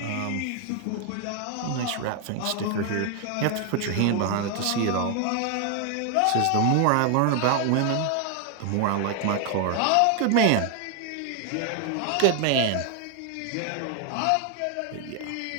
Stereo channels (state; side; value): different; both; correlation 0.00